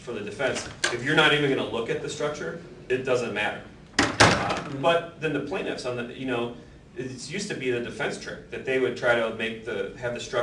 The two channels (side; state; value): both; identical; correlation 1.00